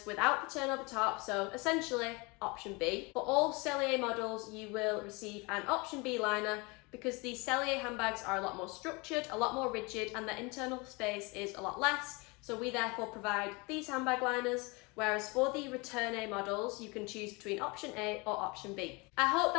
without the turn over top, so essentially option B. For all Cellier models, you will receive an option B liner because the Cellier handbags are a lot more structured, a lot more rigid, and the internal space is a lot less. So we therefore provide these handbag liners, whereas for the Return A models, you can choose between option A or option B. I hope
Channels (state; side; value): quieter; right; 27.4 dB